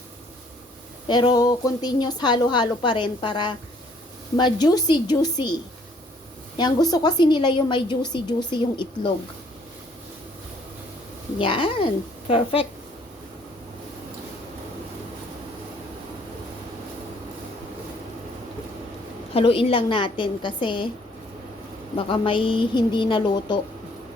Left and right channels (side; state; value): both; normal; correlation 0.62